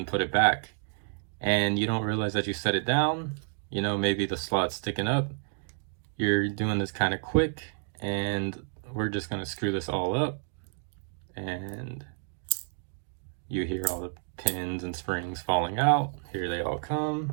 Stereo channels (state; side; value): silent; left; 58 dB below the other